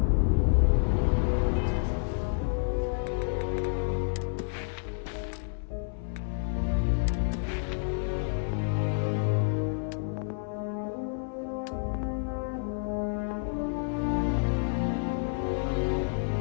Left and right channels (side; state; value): right; silent; 58 dB below the other